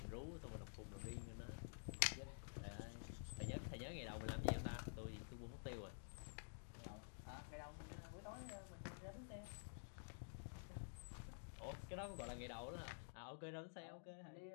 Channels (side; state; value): right; silent; digital silence